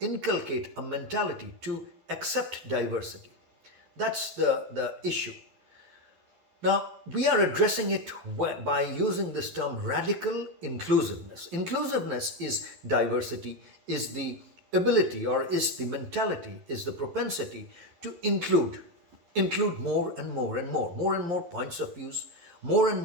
inculcate a mentality to accept diversity. That's the issue. Now, we are addressing it by using this term radical inclusiveness. Inclusiveness is diversity, is the ability or is the mentality, is the propensity to include more and more and more points of views, more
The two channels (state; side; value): late; left; 11 ms